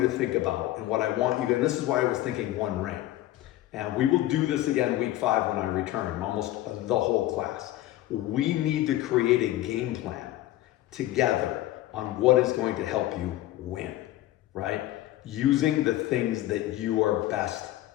think about and what I want you to, and this is why I was thinking 1 ring. And we will do this again week 5 when I return, almost the whole class. We need to create a game plan together on what is going to help you win, right? Using the things that you are best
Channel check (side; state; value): right; quieter; 15.0 dB